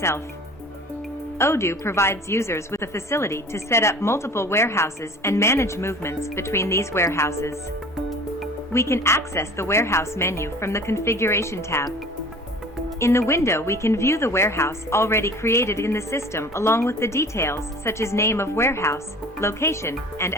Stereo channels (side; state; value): both; normal; correlation 0.44